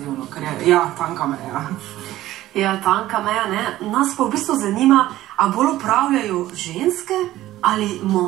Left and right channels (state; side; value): quieter; left; 15.0 dB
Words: ker je, ja, tanka meja. Ja, tanka meja, Nas pa v bistvu zanima, a bolj opravljajo ženske ali